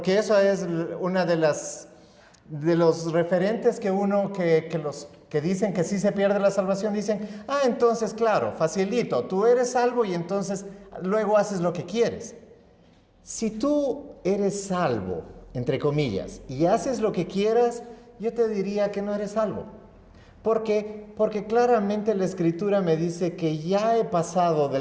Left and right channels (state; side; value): identical; both; correlation 1.00